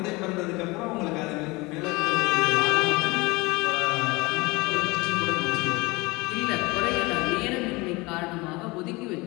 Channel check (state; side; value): quieter; right; 23.9 dB